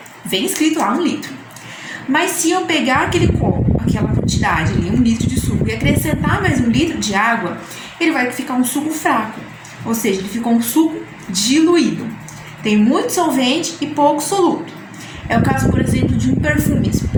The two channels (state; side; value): identical; both; correlation 1.00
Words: Vem escrito lá 1 litro. Mas se eu pegar aquele copo, aquela quantidade ali, 1 litro de suco, e acrescentar mais 1 litro de água, ele vai ficar um suco fraco. Ou seja, ele ficou um suco diluído. Tem muito solvente e pouco soluto. É o caso, por exemplo, de